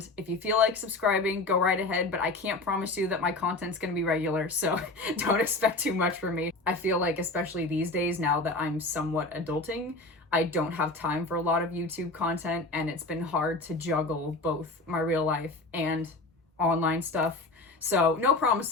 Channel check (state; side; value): quieter; right; 3.1 dB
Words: if you feel like subscribing, go right ahead, but I can't promise you that my content's gonna be regular, so don't expect too much from me. I feel like, especially these days, now that I'm somewhat adulting, I don't have time for a lot of YouTube content, and it's been hard to juggle both my real life and online stuff. So no